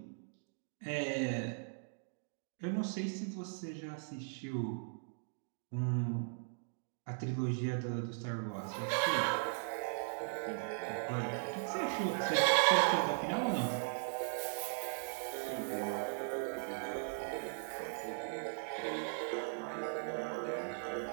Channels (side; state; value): left; silent; digital silence